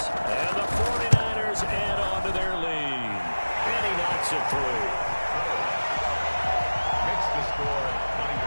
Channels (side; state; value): both; inverted; correlation -1.00